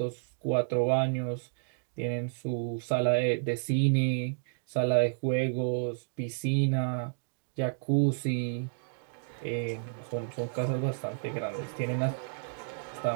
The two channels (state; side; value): silent; left; digital silence